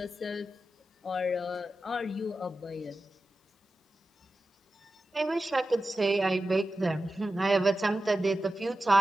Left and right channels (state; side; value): normal; both; correlation 0.93